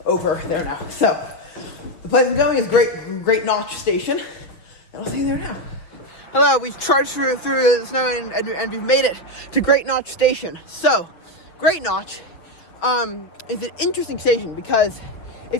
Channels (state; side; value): late; right; 6.3 ms